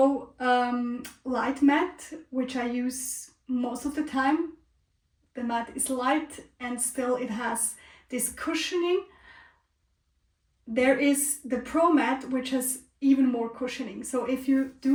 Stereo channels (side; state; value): both; identical; correlation 1.00